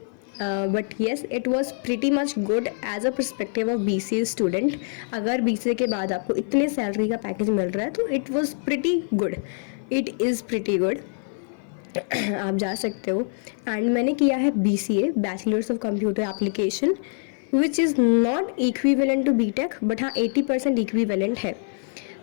But yes, it was pretty much good as a perspective of BCA student. अगर BCA के बाद आपको इतने सैलरी का पैकेज मिल रहा है तो it was pretty good, it is pretty good. आप जा सकते हो। एंड मैंने किया है BCA, bachelors of computer application, which is not equivalent to BTech, but हाँ 80% इक्विवेलेंट है।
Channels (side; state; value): right; silent; 56 dB below the other